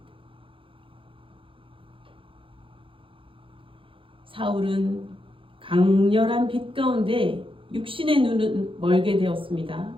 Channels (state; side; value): late; left; 0.25 ms